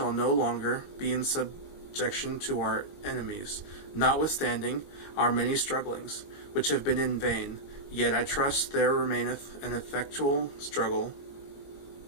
no longer be in subjection to our enemies, notwithstanding our many strugglings, which have been in vain. Yet I trust there remaineth an effectual struggle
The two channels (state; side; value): late; right; 21 ms